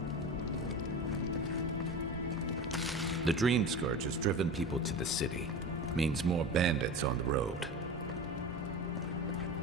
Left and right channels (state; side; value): normal; both; correlation 0.29